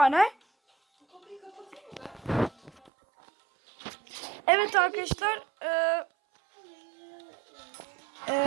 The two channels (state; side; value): drops out; left; at 2.9 s